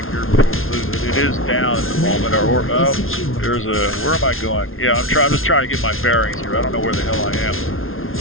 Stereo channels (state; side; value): late; right; 0.61 ms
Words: here before we lose it. It is down at the moment. Where am I going? Yeah, I'm just trying to get my bearings here. I don't know where the hell I am.